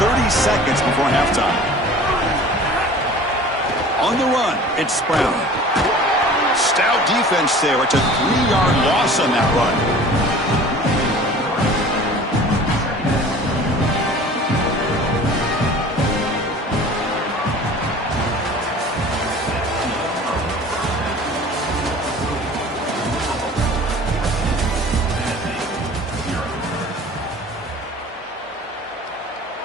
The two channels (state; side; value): normal; both; correlation 0.44